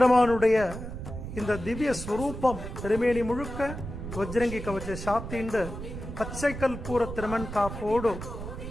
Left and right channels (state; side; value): noise; right; rumble, 8 dB below the sound